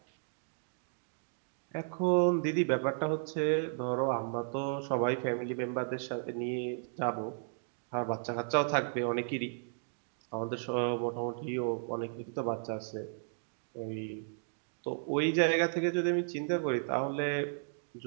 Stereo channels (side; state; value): left; silent; digital silence